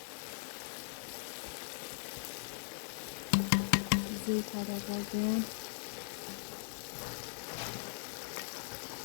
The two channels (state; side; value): silent; right; 51 dB below the other